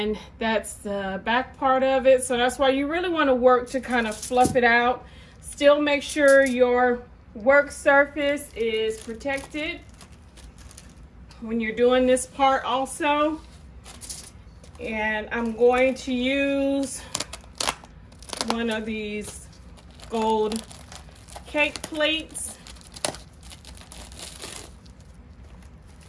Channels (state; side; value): identical; both; correlation 1.00